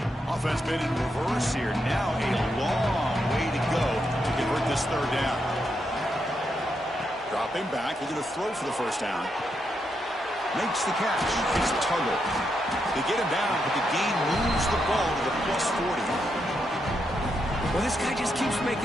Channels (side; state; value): both; normal; correlation 0.82